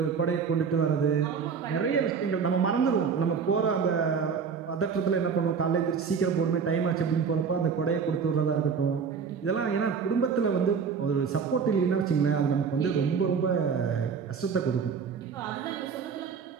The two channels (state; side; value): quieter; left; 6.1 dB